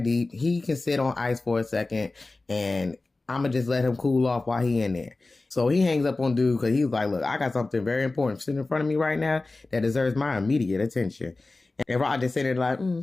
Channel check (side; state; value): right; quieter; 3.3 dB